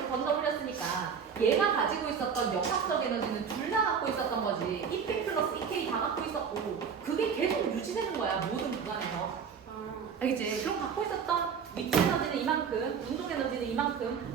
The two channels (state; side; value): quieter; left; 6.7 dB